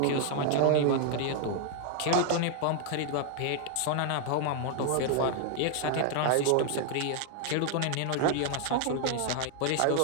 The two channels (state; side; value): different; both; correlation 0.00